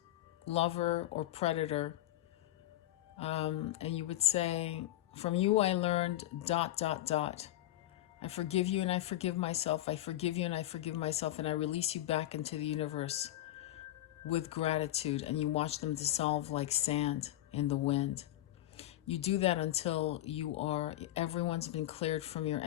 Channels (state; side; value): quieter; right; 14.5 dB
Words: lover or predator. And you would say, from you I learned ... I forgive you and I forgive myself. I forgive you and I forgive myself. And I release you back into the universe with gratitude. And you watch them dissolve like sand in the wind. You do that until everyone's been cleared from your